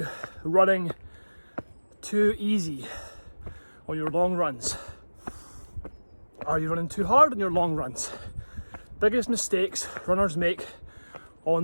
running too easy on your long runs? Are you running too hard on your long runs? Biggest mistakes runners make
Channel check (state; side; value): inverted; both; correlation -1.00